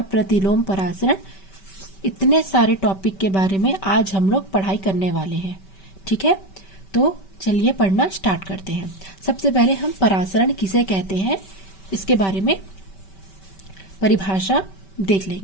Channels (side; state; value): right; late; 5.2 ms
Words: प्रतिलोम परासरण, इतने सारे टॉपिक के बारे में आज हम लोग पढ़ाई करने वाले हैं। ठीक है, तो चलिए पढ़ना स्टार्ट करते हैं। सबसे पहले हम परासरण किसे कहते हैं इसके बारे में परिभाषा देख